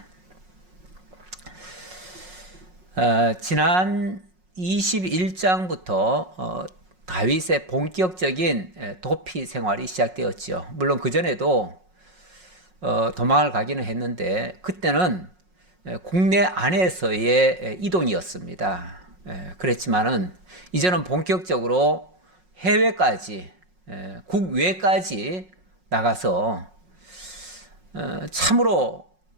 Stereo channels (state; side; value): late; left; 5.5 ms